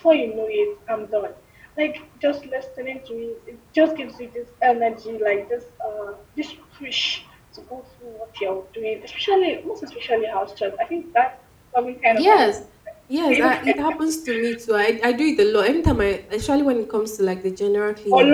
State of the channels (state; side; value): identical; both; correlation 1.00